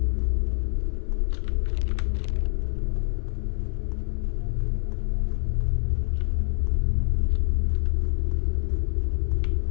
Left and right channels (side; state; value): right; silent; 61 dB below the other